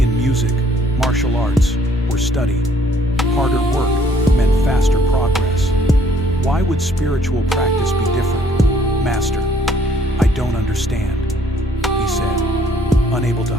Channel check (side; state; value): both; normal; correlation 0.63